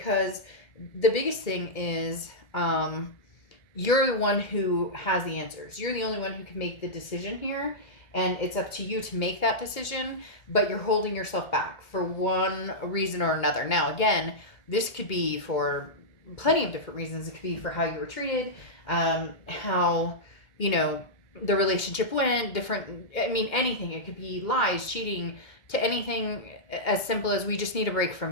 the biggest thing is, you're the one who has the answers. You're the only one who can make the decision here, and it's up to you to make that decision, but you're holding yourself back for one reason or another. Now, again, this could be for plenty of different reasons. It could be for how you were treated, how, the relationship went, anything. It could be lies, cheating, to anything as simple as we just need a break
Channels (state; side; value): late; right; 2.1 ms